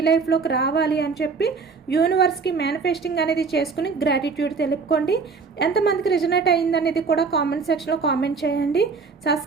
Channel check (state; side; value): quieter; left; 4.9 dB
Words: లైఫ్లోకి రావాలి అని చెప్పి యూనివర్స్కి మేనిఫెస్టింగ్ అనేది చేసుకుని గ్రాటిట్యూడ్ తెలుపుకోండి. ఎంతమందికి రిజనేట్ అయిందనేది కూడా కామెంట్ సెక్షన్లో కామెంట్ చేయండి.